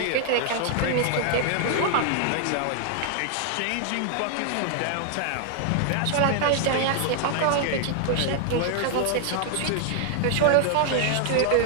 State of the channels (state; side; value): different; both; correlation 0.00